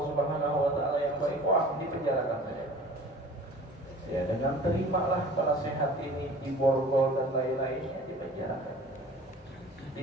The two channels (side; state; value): both; normal; correlation 0.45